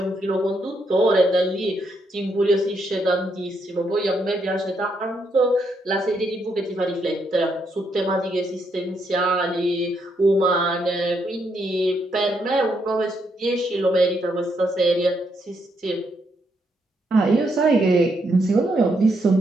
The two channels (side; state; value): both; normal; correlation 0.77